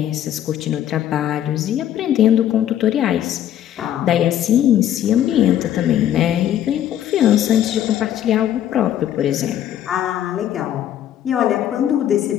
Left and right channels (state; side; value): quieter; right; 11.2 dB